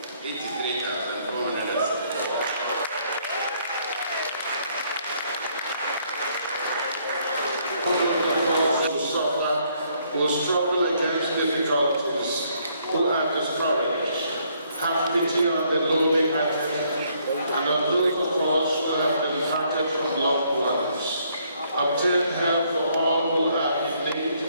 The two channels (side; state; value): both; inverted; correlation -0.68